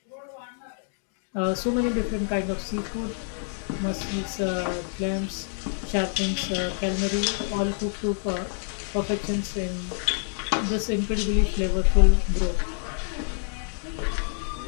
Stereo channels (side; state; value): right; silent; 60 dB below the other